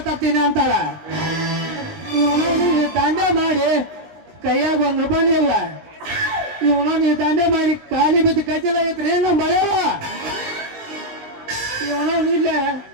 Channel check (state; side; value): late; left; 19 ms